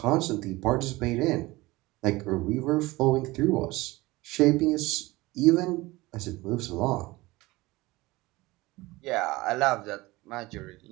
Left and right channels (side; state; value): left; quieter; 20.6 dB